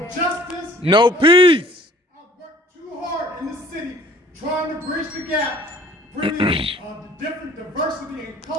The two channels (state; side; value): normal; both; correlation 0.53